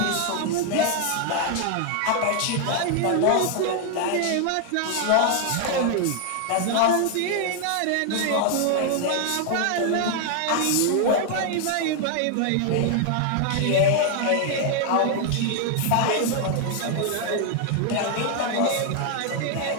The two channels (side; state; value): both; different; correlation 0.00